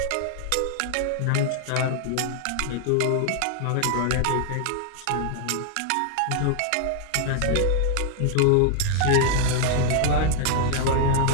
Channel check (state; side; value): different; both; correlation 0.00